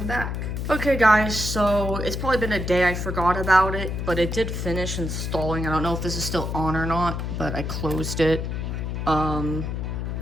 back. Okay guys, so it's probably been a day. I forgot about it, but it did finish installing. I don't know if this is still on or not, but I closed it. I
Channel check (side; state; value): left; noise; hum, 3 dB below the sound